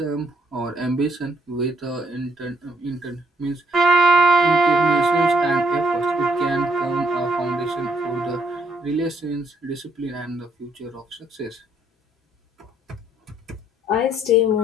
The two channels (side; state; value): both; normal; correlation 0.69